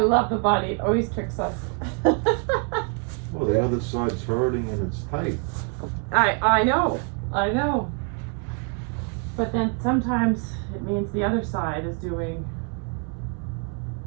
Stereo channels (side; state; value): left; quieter; 37.8 dB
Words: the body, it always tricks us. Well, the other side's hurting and it's tight. I know. But then sometimes it means the other side is doing